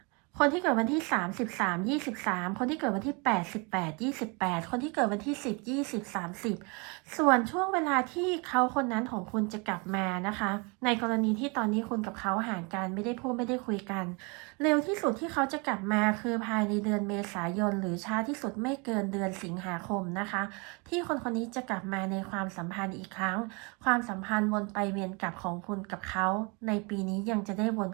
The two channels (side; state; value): left; quieter; 30.8 dB